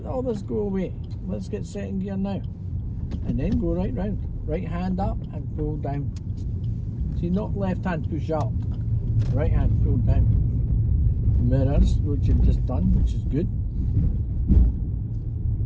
all this go away. Let's get second gear now. And then go right round. Right hand up and pull down. See, not left hand push up. Right hand pull down. Mirrors, which you've just done, which is good.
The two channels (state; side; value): identical; both; correlation 1.00